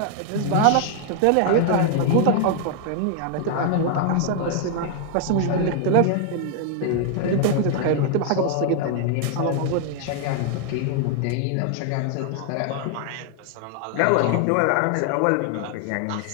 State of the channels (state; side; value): different; both; correlation 0.00